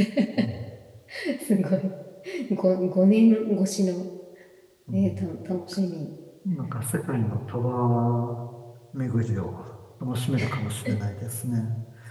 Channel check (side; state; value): both; identical; correlation 1.00